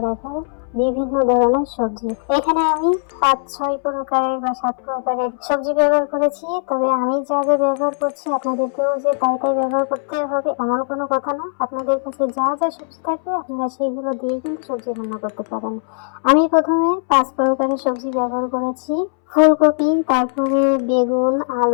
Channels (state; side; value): silent; right; 66 dB below the other